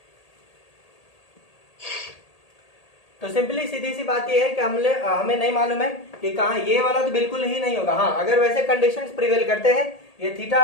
तो सिंपली सीधी सी बात यह है कि हमें नहीं मालूम है कि कहाँ ये वाला तो बिल्कुल ही नहीं होगा। हाँ, अगर वैसे कंडीशंस प्रिवेल करते हैं, ये थीटा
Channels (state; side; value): late; right; 1.8 ms